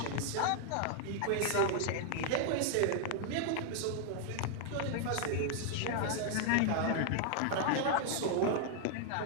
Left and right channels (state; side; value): different; both; correlation 0.00